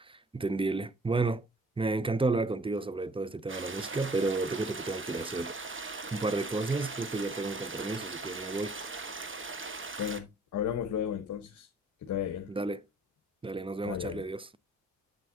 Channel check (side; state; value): both; normal; correlation 0.55